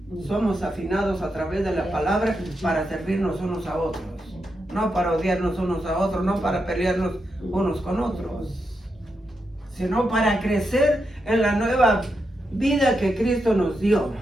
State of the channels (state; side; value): normal; both; correlation 0.85